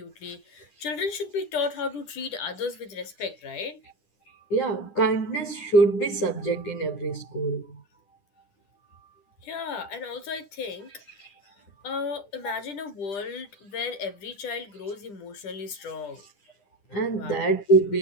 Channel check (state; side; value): late; right; 10 ms